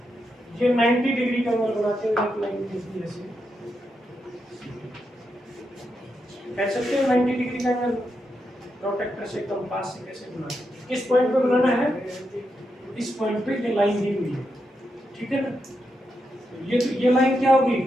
ये 90 डिग्री का एंगल बनाते हो, एक लाइन खींची ऐसे, कह सकते हो 90 डिग्री का एंगल प्रोटेक्टर से, कंपास से कैसे बनाते? किस पॉइंट पे बनाना है? इस पॉइंट पे ये लाइन दी हुई है, ठीक है ना? ये लाइन क्या होगी?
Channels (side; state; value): both; normal; correlation 0.84